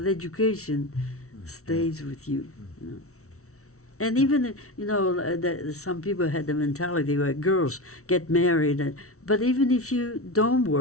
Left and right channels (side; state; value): right; late; 0.64 ms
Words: education stays with you. And even, some people had the mentality where girls get married. But even if you don't